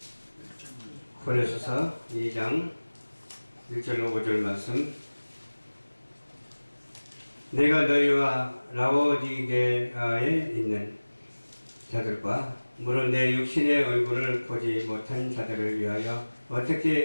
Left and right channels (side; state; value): both; inverted; correlation -1.00